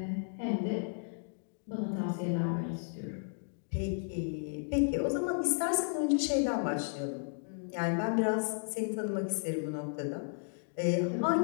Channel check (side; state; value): right; silent; digital silence